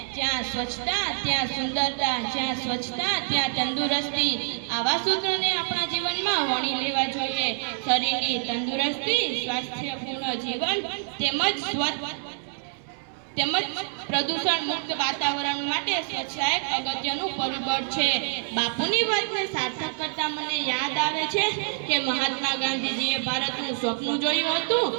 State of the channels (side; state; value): left; silent; 61 dB below the other